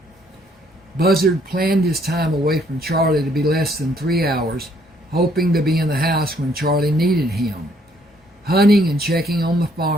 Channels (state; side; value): normal; both; correlation 0.66